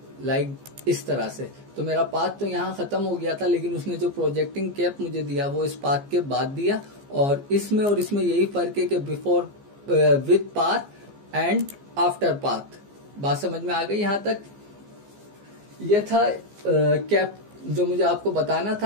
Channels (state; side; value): late; left; 15 ms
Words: लाइक इस तरह से। तो मेरा पाथ तो यहाँ खत्म हो गया था, लेकिन उसने जो प्रोजेक्टिंग कैप मुझे दिया वो इस पाथ के बाद दिया। और इसमें यही फर्क है कि before with path and after path. बात समझ में आ गई यहाँ तक। ये था कैप जो मुझे आपको बताना